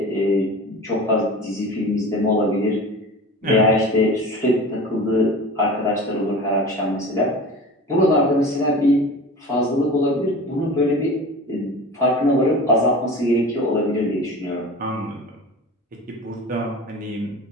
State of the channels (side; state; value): both; normal; correlation 0.35